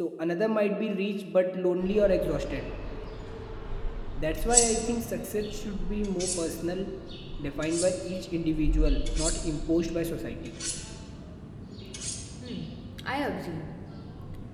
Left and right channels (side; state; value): both; identical; correlation 1.00